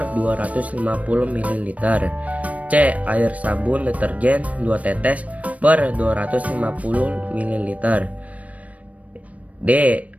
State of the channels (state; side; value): late; left; 0.067 ms